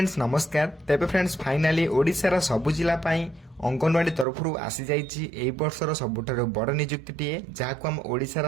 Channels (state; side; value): drops out; left; at 4.2 s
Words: नमस्कार। तेबे फ्रेंड्स फाइनाली ओडिशार सबु जिला पाई अंगनवाड़ी तरफ आसी जाइए एई वर्षर सबुठारु बड़ नियुक्तिटीए जहां हम ओडिशार